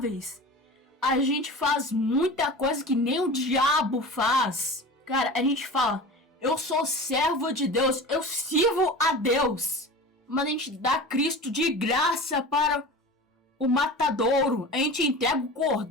A gente faz muita coisa que nem o diabo faz. Cara, a gente fala, eu sou servo de Deus, eu sirvo a Deus. Mas a gente dá Cristo de graça para o matadouro. A gente entrega o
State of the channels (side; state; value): both; normal; correlation 0.34